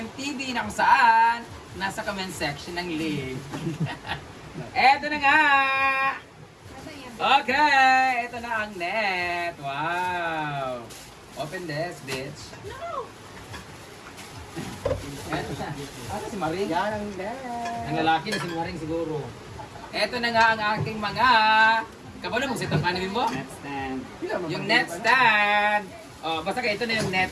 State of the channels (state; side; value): identical; both; correlation 1.00